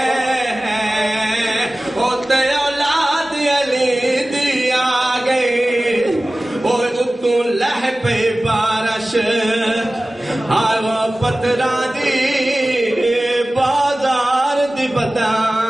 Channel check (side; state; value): both; normal; correlation 0.97